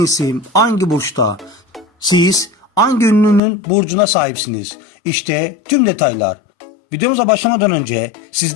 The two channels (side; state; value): right; drops out; at 3.4 s